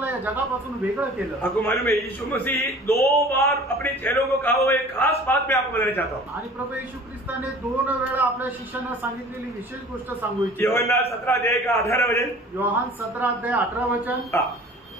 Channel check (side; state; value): both; normal; correlation 0.45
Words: या जगापासून वेगळं केलं। आपको मालूम है यीशु मसीह 2 बार अपने चेलों को कहा हुआ एक खास बात मैं आपको बताना चाहता हूँ। आणि प्रभू येशू ख्रिस्ताने 2 वेळा आपल्या शिष्यांना सांगितलेली विशेष गोष्ट सांगू इच्छितो। योहन्ना 17 अध्याय का 18 वचन। योहान 17 अध्याय 18 वचन।